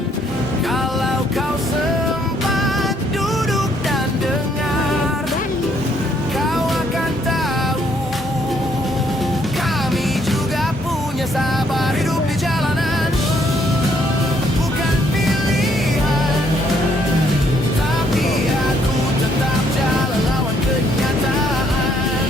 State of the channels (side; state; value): both; normal; correlation 0.69